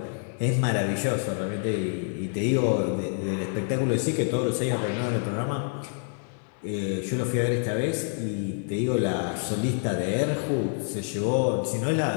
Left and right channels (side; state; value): right; silent; 60 dB below the other